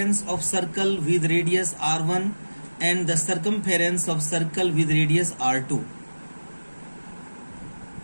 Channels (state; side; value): inverted; both; correlation -1.00